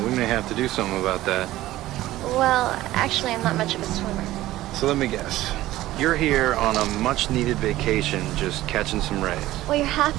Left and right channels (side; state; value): left; quieter; 15.8 dB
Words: we may have to do something about that. Well, actually, I'm not much of a swimmer. So let me guess. You're here on a much-needed vacation, just catching some rays. Well, you're half